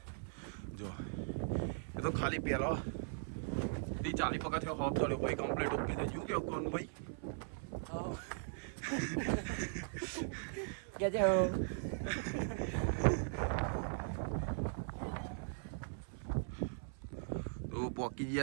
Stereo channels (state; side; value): silent; left; 51 dB below the other